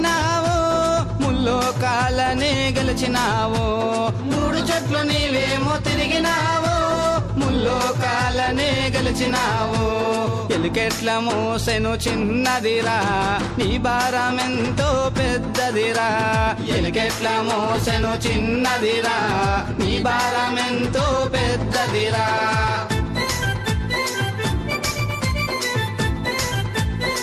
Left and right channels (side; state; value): both; identical; correlation 1.00